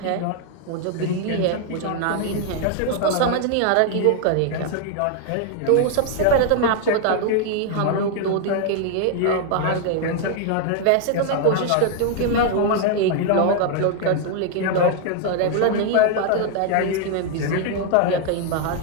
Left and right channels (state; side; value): different; both; correlation 0.00